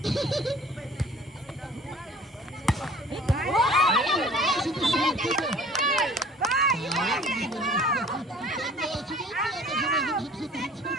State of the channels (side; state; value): both; normal; correlation 0.48